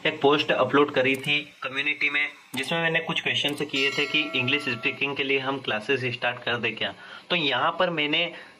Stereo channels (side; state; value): both; identical; correlation 1.00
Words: एक पोस्ट अपलोड करी थी कम्युनिटी में, जिसमें मैंने कुछ क्वेश्चन किए थे कि इंग्लिश स्पीकिंग के लिए हम क्लासेस स्टार्ट कर दे क्या। तो यहाँ पर मैंने